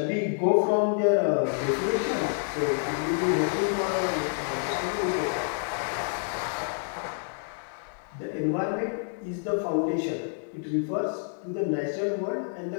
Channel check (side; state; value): right; silent; digital silence